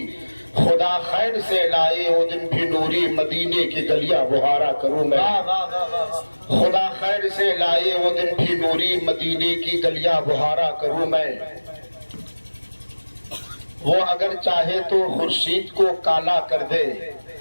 خدا خیر سے لائے وہ دن بھی نوری، مدینے کی گلیاں بہارا کروں میں۔ خدا خیر سے لائے وہ دن بھی نوری، مدینے کی گلیاں بہارا کروں میں۔ وہ اگر چاہے تو خورشید کو کالا کر دے،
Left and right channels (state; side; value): inverted; both; correlation -1.00